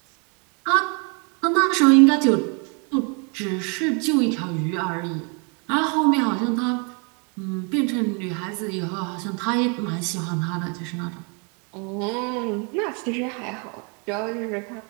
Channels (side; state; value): left; quieter; 35.4 dB